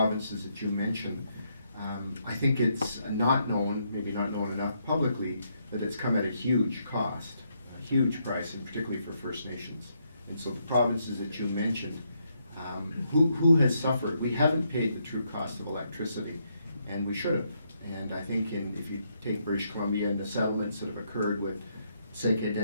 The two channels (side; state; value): both; inverted; correlation -0.76